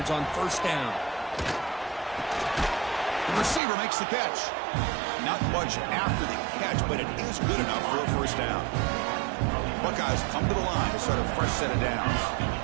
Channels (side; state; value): left; drops out; at 3.6 s